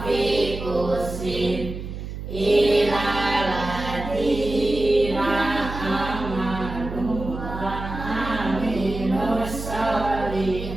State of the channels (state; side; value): noise; right; hum, 8 dB below the sound